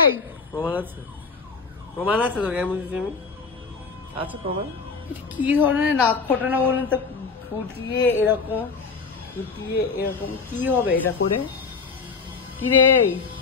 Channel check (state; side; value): quieter; right; 4.9 dB